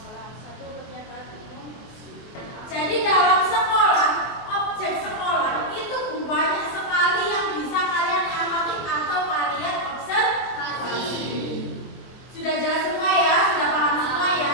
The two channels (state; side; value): late; right; 23 ms